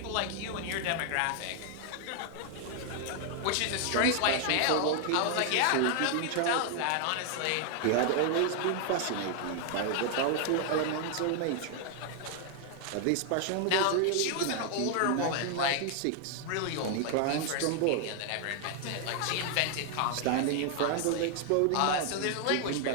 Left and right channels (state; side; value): different; both; correlation 0.00